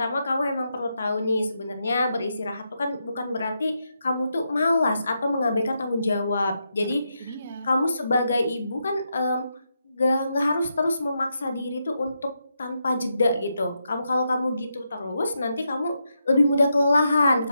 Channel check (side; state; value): both; inverted; correlation -0.83